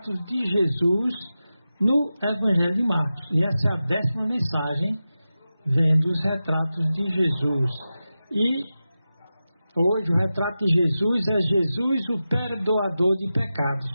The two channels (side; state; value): both; inverted; correlation -0.93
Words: de Jesus no Evangelho de Marcos, e essa é a 10ª mensagem, vendo os retratos de Jesus. E hoje o retrato de Jesus é Jesus, o perdoador de